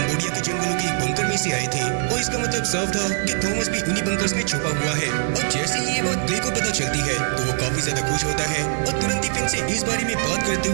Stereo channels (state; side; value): silent; left; 64 dB below the other